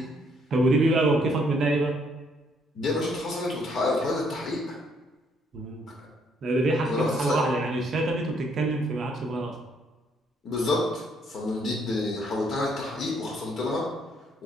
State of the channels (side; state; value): both; normal; correlation 0.69